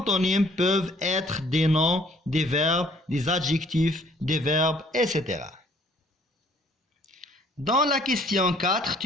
peuvent être des noms, des verbes, des adjectifs, des verbes, etc. Dans la question 4,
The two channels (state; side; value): normal; both; correlation 0.60